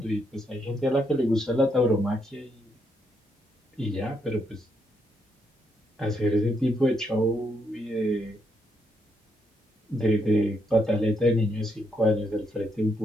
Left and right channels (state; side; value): normal; both; correlation 0.77